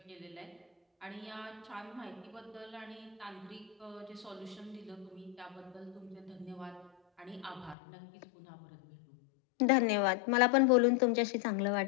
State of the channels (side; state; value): right; drops out; at 7.8 s